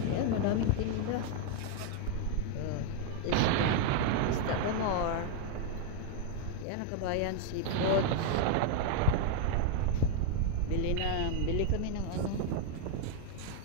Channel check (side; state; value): both; different; correlation 0.01